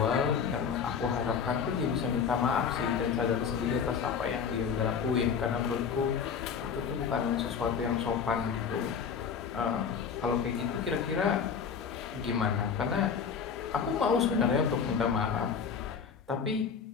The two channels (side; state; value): right; quieter; 6.6 dB